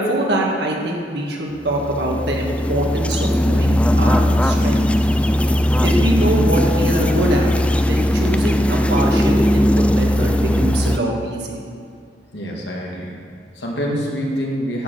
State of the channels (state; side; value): normal; both; correlation 0.82